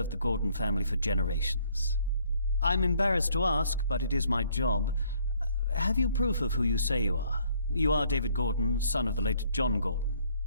the Gordon family for generations. I'm embarrassed to ask, but it is my job. Have you proof of who you say you are? You are David Gordon, son of the late John Gordon.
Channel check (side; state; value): both; inverted; correlation -0.65